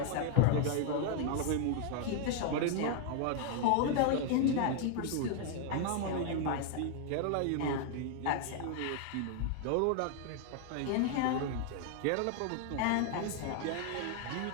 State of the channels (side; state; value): both; different; correlation 0.00